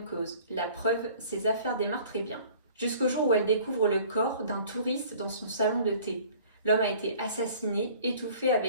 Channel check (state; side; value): inverted; both; correlation -0.50